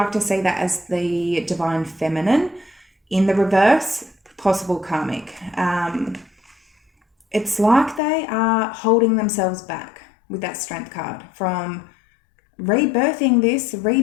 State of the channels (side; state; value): right; drops out; at 8.0 s